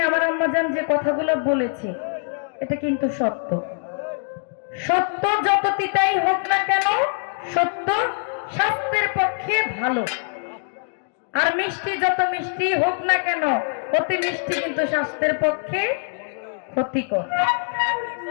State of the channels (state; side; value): silent; right; 55 dB below the other